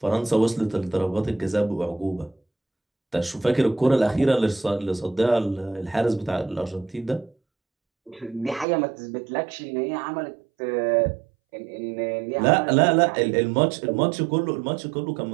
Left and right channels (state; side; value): drops out; left; at 8.7 s